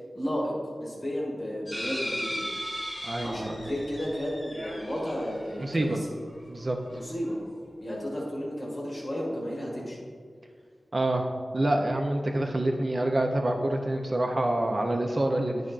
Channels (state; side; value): normal; both; correlation 0.96